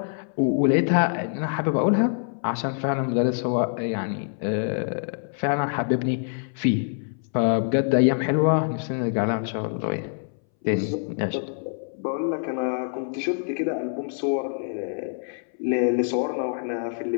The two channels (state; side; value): silent; right; 60 dB below the other